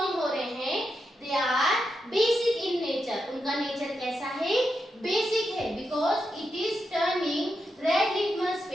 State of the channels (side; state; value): both; normal; correlation 0.86